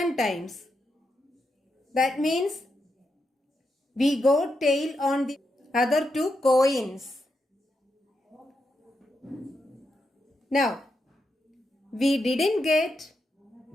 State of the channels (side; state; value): both; normal; correlation 0.84